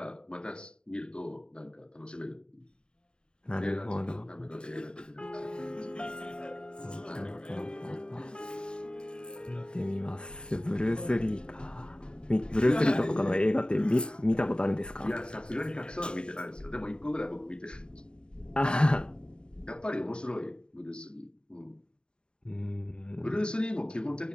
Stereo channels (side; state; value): right; late; 0.050 ms